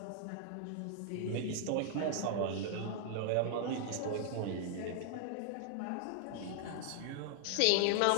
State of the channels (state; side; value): different; both; correlation -0.01